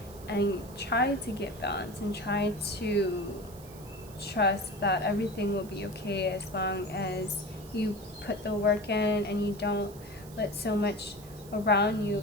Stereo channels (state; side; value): noise; right; hiss, 20 dB below the sound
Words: and try to get balance, and try to trust that everything will be okay as long as you put the work in and you don't let so much around you